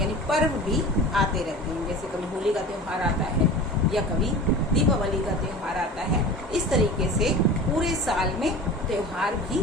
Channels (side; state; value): both; normal; correlation 0.36